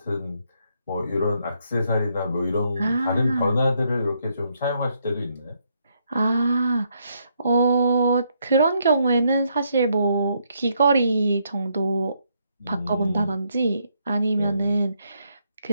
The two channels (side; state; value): both; inverted; correlation -0.75